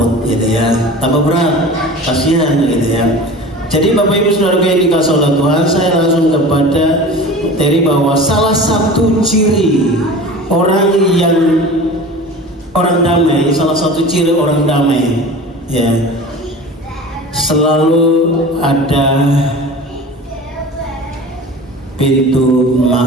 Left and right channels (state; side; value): normal; both; correlation 0.37